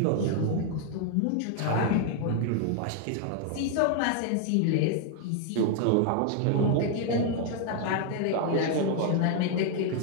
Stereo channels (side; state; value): both; different; correlation 0.00